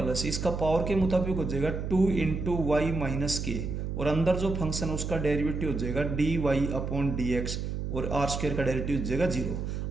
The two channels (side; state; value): right; noise; hum, 3 dB below the sound